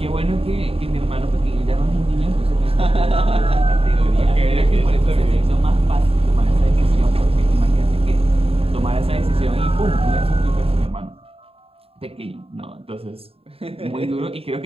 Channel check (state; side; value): late; left; 0.28 ms